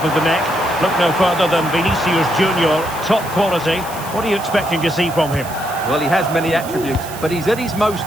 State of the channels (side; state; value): right; noise; hiss, 15 dB below the sound